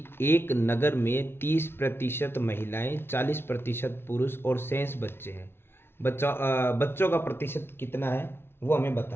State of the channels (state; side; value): late; right; 0.11 ms